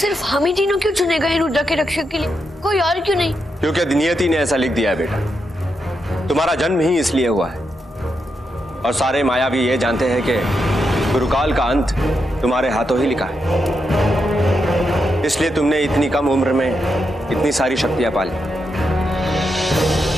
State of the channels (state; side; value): normal; both; correlation 0.84